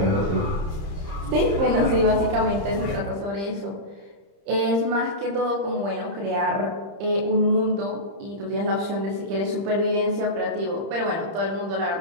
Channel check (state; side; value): late; left; 30 ms